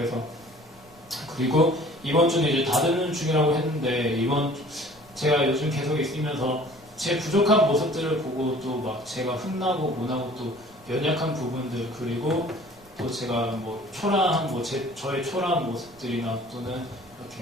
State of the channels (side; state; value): right; noise; rumble, 27 dB below the sound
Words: 그리고 이번 주는 이제 다듬는 중이라고 했는데 제가 요즘 계속 있으면서 제 부족한 모습들을 보고 또 막 제가 흥나고 못하고 또 연약한 부분들 그리고 또 제가 뭐 초라한 저의 초라한 모습들이나 또는